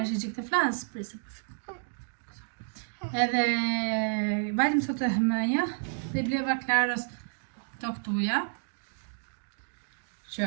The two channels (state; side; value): silent; left; digital silence